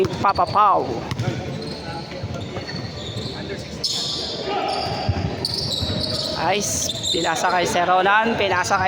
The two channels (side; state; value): both; identical; correlation 1.00